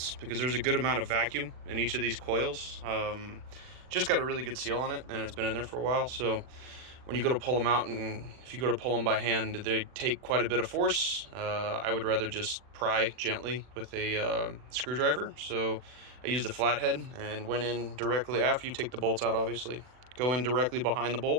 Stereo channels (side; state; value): left; late; 40 ms